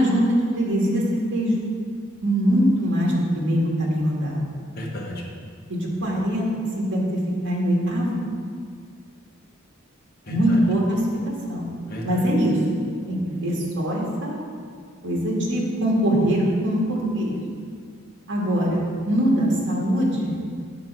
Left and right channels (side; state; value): both; normal; correlation 0.73